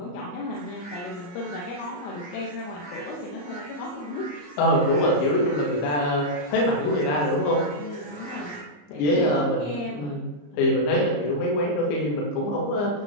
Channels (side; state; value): right; late; 34 ms